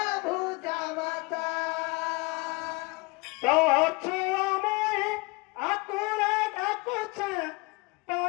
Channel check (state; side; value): quieter; right; 26.6 dB